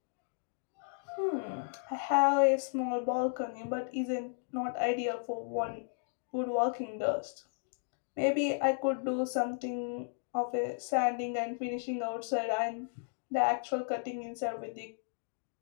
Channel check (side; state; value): right; silent; digital silence